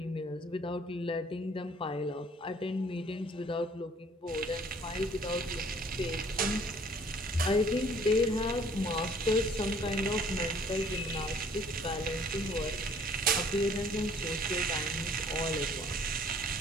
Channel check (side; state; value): both; normal; correlation 0.57